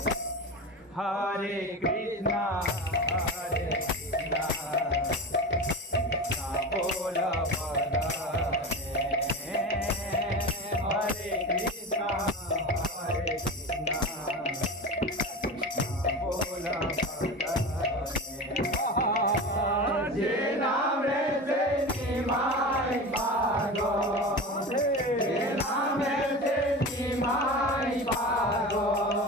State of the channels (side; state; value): both; normal; correlation 0.29